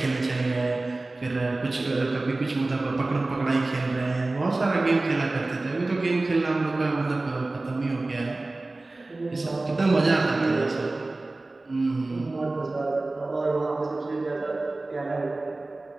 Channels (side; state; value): left; quieter; 3.1 dB